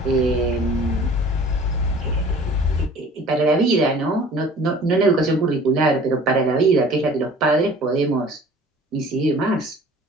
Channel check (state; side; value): normal; both; correlation 0.48